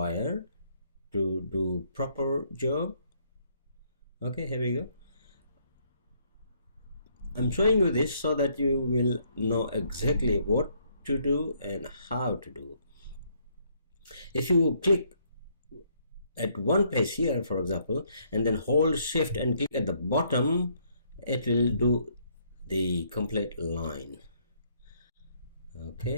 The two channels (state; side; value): inverted; both; correlation -0.69